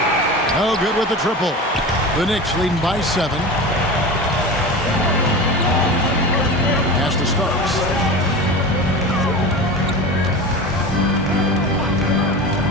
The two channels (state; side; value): normal; both; correlation 0.30